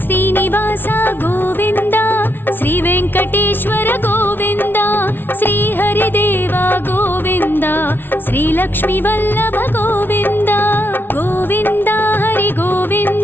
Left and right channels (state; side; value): late; right; 0.10 ms